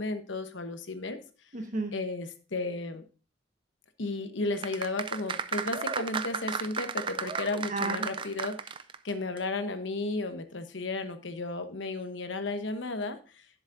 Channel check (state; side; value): normal; both; correlation 0.02